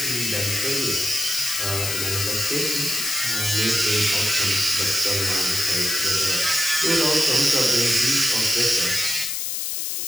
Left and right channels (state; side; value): noise; left; hiss, 2 dB below the sound